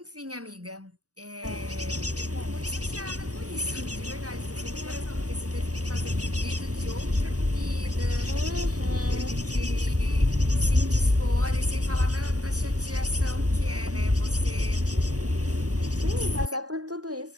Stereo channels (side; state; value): left; late; 0.67 ms